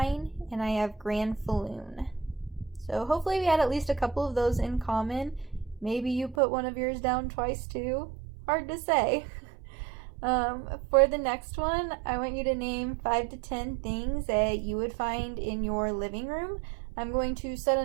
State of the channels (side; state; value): left; drops out; at 6.4 s